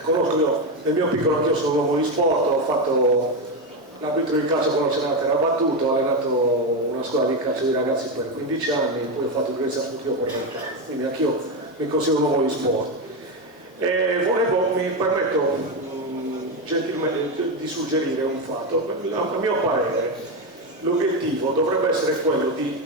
conosco. Io nel mio piccolo, anch'io sono un uomo di sport, ho fatto l'arbitro di calcio quando c'era la terra battuta, ho allenato una scuola di calcio di ragazzi per 15 anni, poi ho fatto direzione sportiva per 20 anni, quindi anch'io mi considero un uomo di sport. Mi permetto gentilmente di suggerire un fatto. A mio parere l'obiettivo dovrebbe essere quello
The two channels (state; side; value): normal; both; correlation 0.11